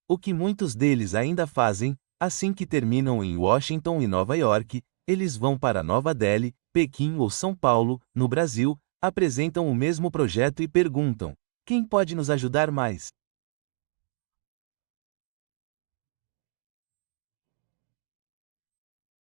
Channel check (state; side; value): silent; left; digital silence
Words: o que muitos deles ainda fazem, assim que terminam em Washington e Nova York, eles vão para Nova Delhi, Pequim ou São Paulo, no Brasil, apresentam o mesmo projeto e perguntam: quem pode nos ajudar mais?